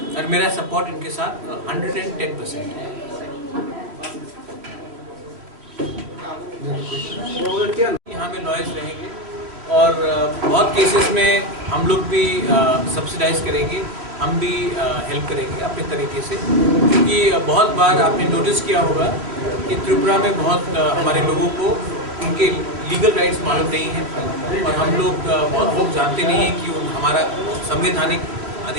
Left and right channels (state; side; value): late; left; 3.1 ms